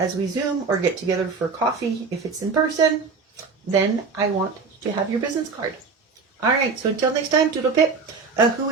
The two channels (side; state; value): left; quieter; 4.8 dB